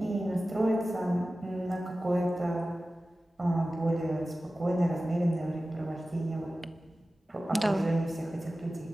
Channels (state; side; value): normal; both; correlation 0.95